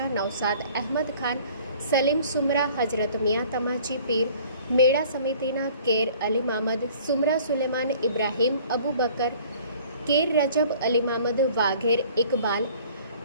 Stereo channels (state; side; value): inverted; both; correlation -0.52